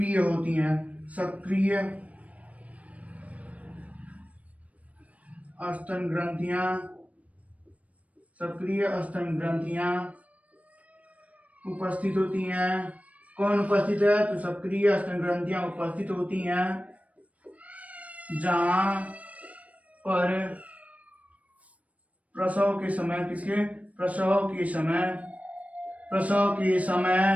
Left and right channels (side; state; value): left; late; 0.068 ms